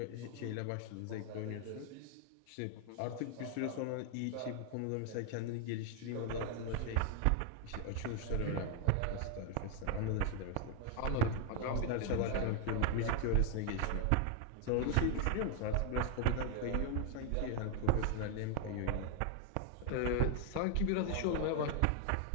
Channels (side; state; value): both; different; correlation 0.01